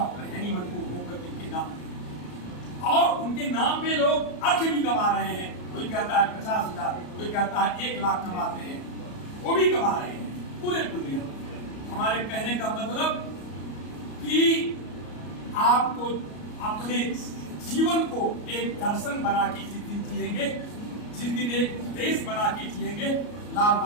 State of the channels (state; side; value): late; right; 34 ms